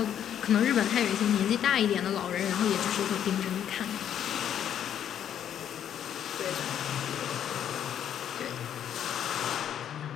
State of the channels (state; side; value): quieter; right; 9.7 dB